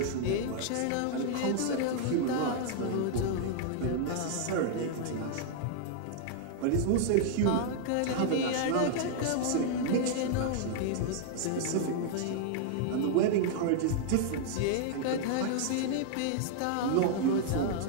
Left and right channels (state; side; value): different; both; correlation -0.01